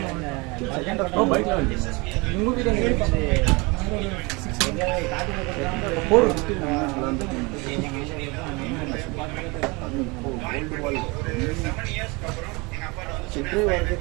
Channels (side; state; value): left; quieter; 26.7 dB